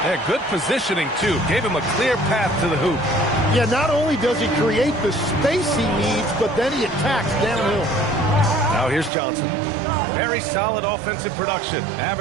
Yeah, good positioning, too. Gave him a clear path to the hoop. Yeah, not only does he create the space he needs, but then he attacks downhill. Now here's Johnson. Very solid offensive production,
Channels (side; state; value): left; drops out; at 9.1 s